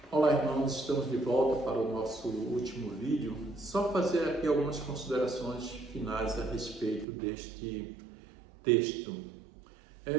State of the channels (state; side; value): drops out; left; at 7.1 s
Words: Olá, irmãos, estamos de volta para o nosso último vídeo. Só fazer aqui algumas considerações finais a respeito deste texto.